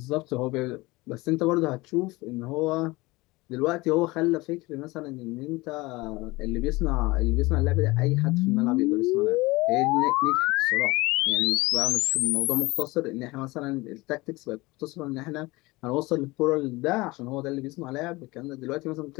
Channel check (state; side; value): quieter; right; 22.0 dB